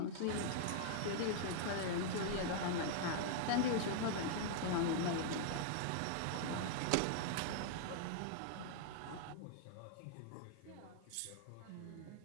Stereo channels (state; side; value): different; both; correlation -0.01